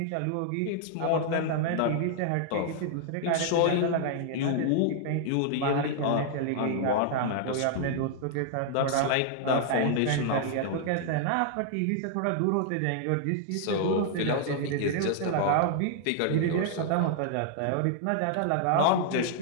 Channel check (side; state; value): both; different; correlation 0.00